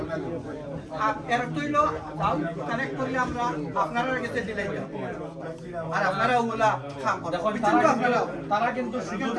এর তৈল কানেক্ট করলে আমরা আপনারা কাছে দিলে আর আপনারা ওগুলা কাম করেন দেখুন তারা কিন্তু সুযোগ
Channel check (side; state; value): both; identical; correlation 1.00